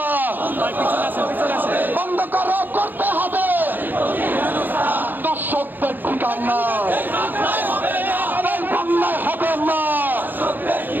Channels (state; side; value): late; left; 0.088 ms